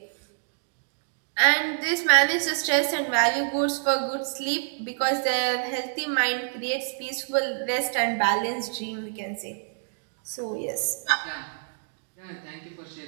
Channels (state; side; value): silent; left; digital silence